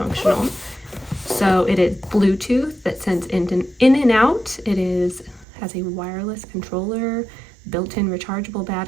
So it is Bluetooth that sends in and out. It has a wireless controller, built-in rechargeable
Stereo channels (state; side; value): drops out; left; at 5.5 s